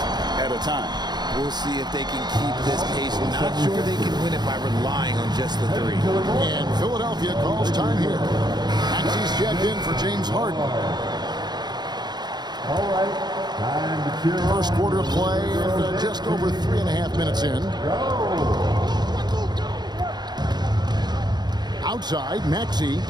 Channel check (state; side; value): late; left; 0.20 ms